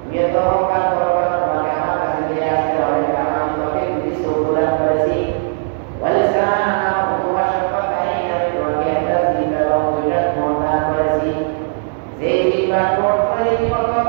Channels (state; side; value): silent; left; digital silence